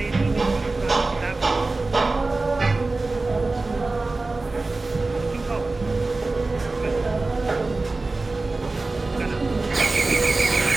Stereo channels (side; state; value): left; quieter; 3.4 dB